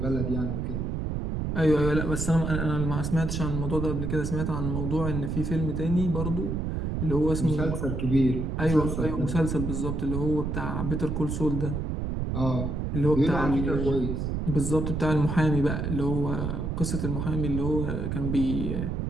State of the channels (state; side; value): noise; right; rumble, 2 dB below the sound